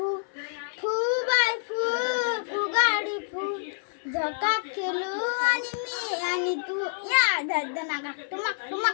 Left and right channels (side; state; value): right; silent; 60 dB below the other